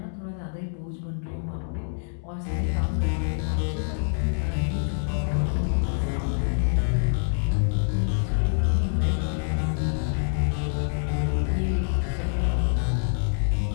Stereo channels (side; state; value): right; silent; digital silence